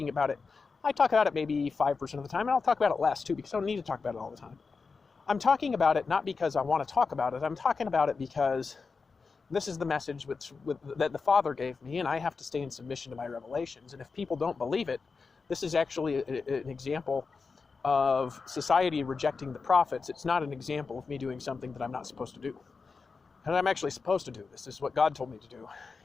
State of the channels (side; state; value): right; quieter; 4.7 dB